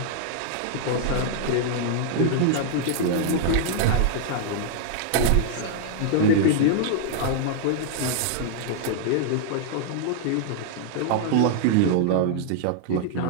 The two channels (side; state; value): both; different; correlation -0.01